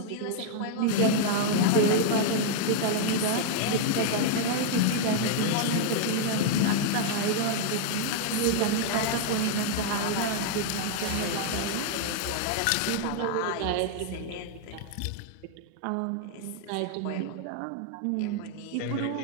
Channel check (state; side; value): different; both; correlation 0.00